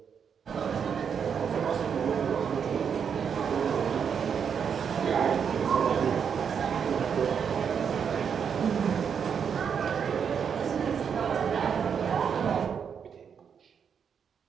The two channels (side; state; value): left; quieter; 7.1 dB